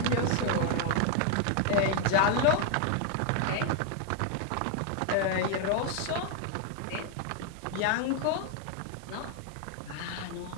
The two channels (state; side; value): different; both; correlation 0.00